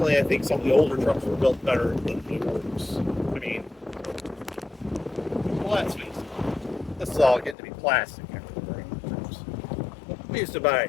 I think some of the older trucks were built better than the new ones. I mean, well, let's face it, this is all getting to be plastic after the trucks. We used to buy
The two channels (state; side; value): drops out; right; at 7.6 s